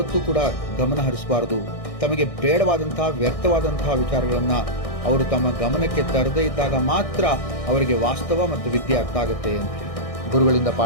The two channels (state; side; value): late; right; 1.6 ms